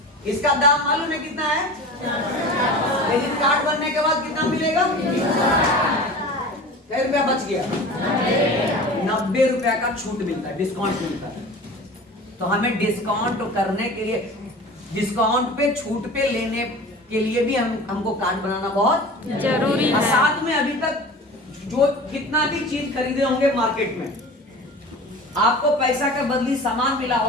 इसका दाम मालूम है कितना है, लेकिन कार्ड बनने के बाद कितना मिलेगा, कितने रुपया बच गया, 90 रुपया का छूट मिलता है, डिस्काउंट मिलता है। तो हमें डिस्काउंट करने के लिए, डिस्काउंट पे छूट पे लेने के लिए भी हमको कार्ड बनाना बहुत जरूरी है। साथ में अभी तक जो कितना भी चीज खरीदे होंगे मार्केट में, आपको पैसा के बदली सामान मिला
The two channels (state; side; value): normal; both; correlation 0.37